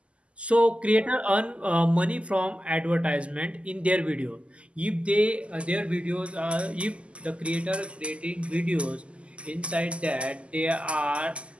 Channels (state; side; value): late; left; 0.056 ms